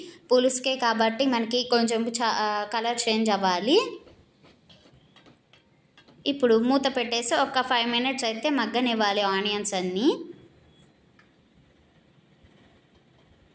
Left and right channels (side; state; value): both; identical; correlation 1.00